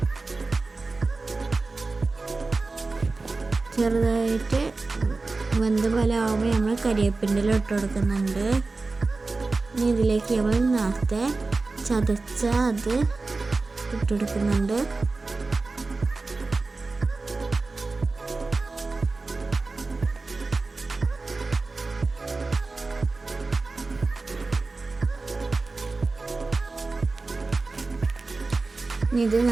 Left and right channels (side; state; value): left; quieter; 3.6 dB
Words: ചെറുതായിട്ട് വെന്ത പോലെ ആകുമ്പോൾ നമ്മൾ കരിവേപ്പിൻ്റെ ഇല ഇട്ട് കൊടുക്കുന്നുണ്ട്. ഇനി ഇതിലേക്ക് നമ്മൾ നേരത്തെ ചതച്ച അത് ഇട്ട് കൊടുക്കുന്നുണ്ട്. ഇത്